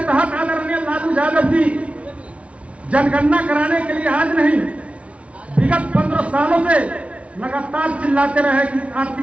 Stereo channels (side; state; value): left; late; 0.063 ms